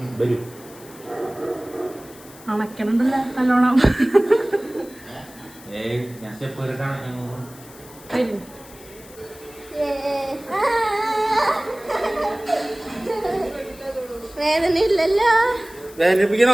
വരൂ. അണക്കണുണ്ടല്ലോ നല്ലോണം. ഞാൻ സ്റ്റെപ്പ് കയറിട്ടാണ്. വേദന ഇല്ലല്ലോ.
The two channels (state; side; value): noise; left; hiss, 21 dB below the sound